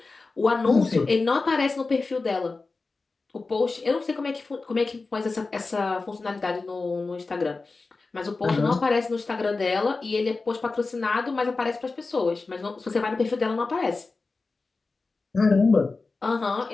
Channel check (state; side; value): quieter; right; 3.8 dB